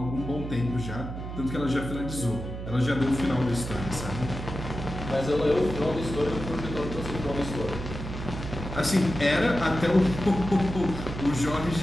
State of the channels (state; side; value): noise; right; hum, 7 dB below the sound